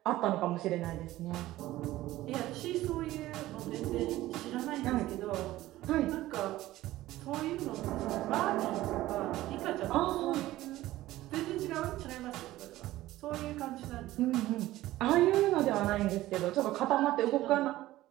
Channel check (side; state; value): left; quieter; 16.0 dB